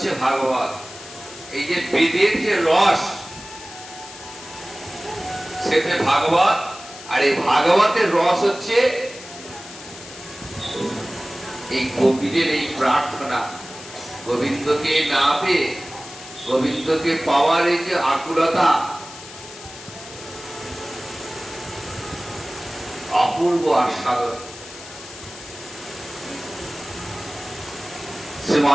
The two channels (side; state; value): left; noise; hiss, 15 dB below the sound